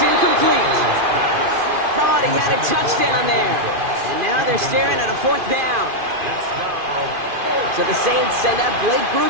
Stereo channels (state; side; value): late; left; 2.5 ms